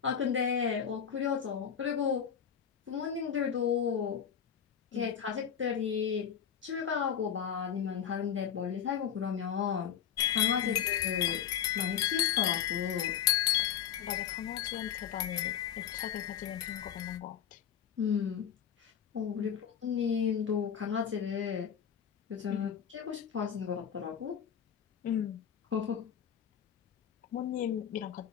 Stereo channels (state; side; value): quieter; right; 8.5 dB